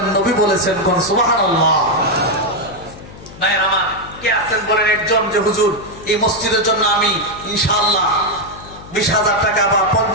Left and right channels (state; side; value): noise; left; hum, 18 dB below the sound